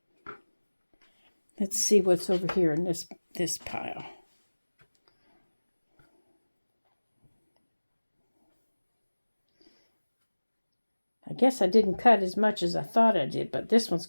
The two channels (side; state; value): both; inverted; correlation -1.00